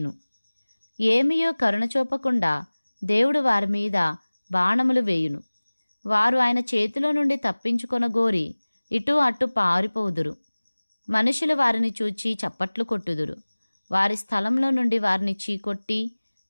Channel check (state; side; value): inverted; both; correlation -1.00